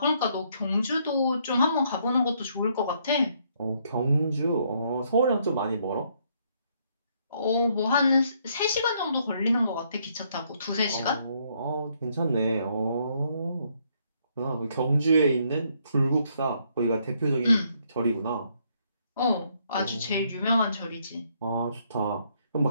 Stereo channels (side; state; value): both; inverted; correlation -0.71